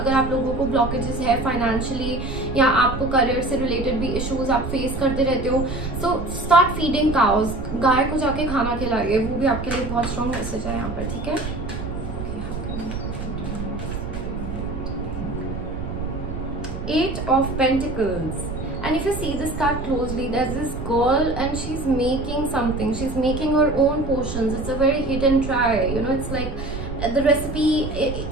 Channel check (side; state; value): right; noise; rumble, 7 dB below the sound